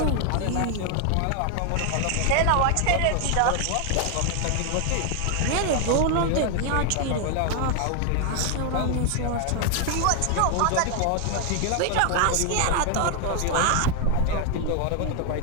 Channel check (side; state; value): both; different; correlation 0.01